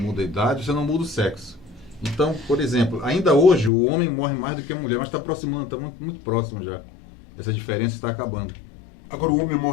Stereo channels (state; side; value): drops out; right; at 3.7 s